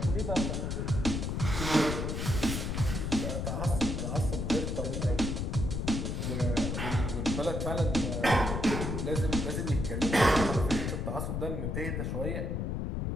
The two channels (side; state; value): left; noise; rumble, 1 dB below the sound